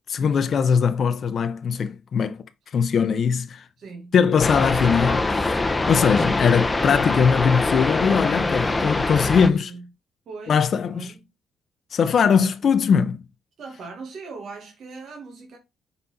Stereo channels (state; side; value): quieter; right; 5.2 dB